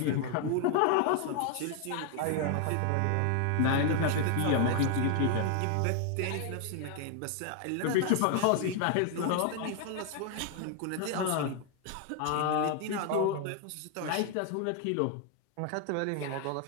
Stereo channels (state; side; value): different; both; correlation 0.00